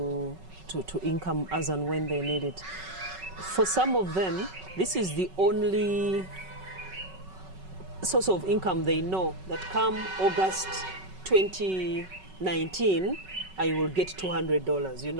income as and when they need it. For some of them, this is the only source of income they know, that come August 2019, I will get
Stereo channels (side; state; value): left; late; 5.3 ms